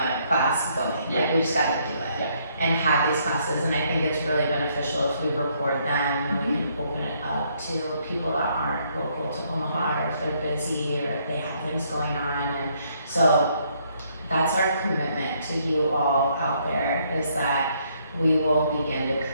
class going. Like we just gotta do it and have these classes, and I think it's really beneficial if we record them and we can open it up to people that aren't local to Omaha, or if they're busy or if they have things going on. And so that's our commitment to you all out there, is that we will begin to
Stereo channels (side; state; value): both; inverted; correlation -0.70